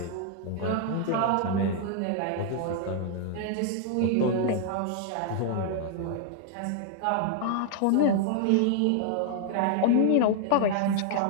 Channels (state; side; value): different; both; correlation 0.00